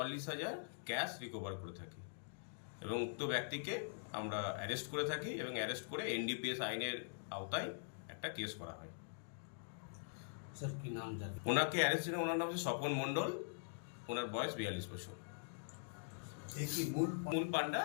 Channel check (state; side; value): silent; right; digital silence